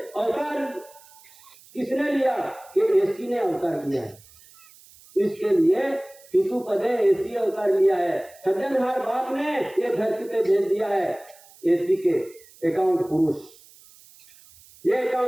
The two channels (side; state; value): right; noise; hiss, 25 dB below the sound